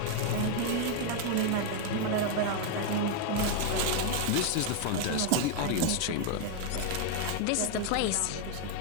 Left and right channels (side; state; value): both; different; correlation 0.00